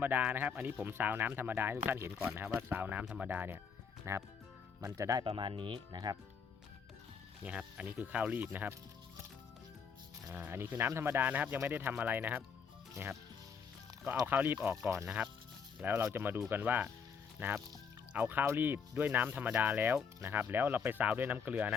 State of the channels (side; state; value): right; quieter; 6.3 dB